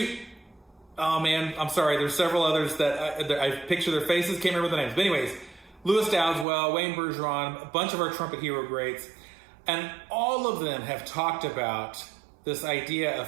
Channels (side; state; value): left; drops out; at 6.5 s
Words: oh man, I'm sorry. There's several others that I picture their faces, can't remember the names. But anyways, Lewis Dowdeswell, Wayne Bergeron, a bunch of our trumpet hero greats, and all of them have talked about this idea